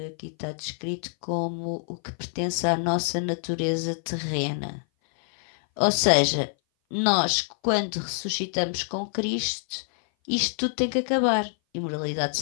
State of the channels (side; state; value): right; silent; 58 dB below the other